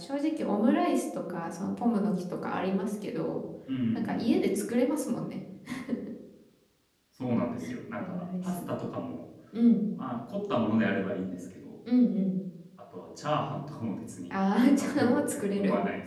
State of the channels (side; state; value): both; identical; correlation 1.00